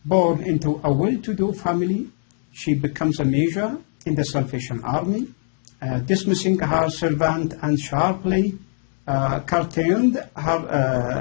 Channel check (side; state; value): right; silent; 64 dB below the other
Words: Born into a well-to-do family, she becomes a major in the Salvation Army, dismissing her servant and sharply curtailed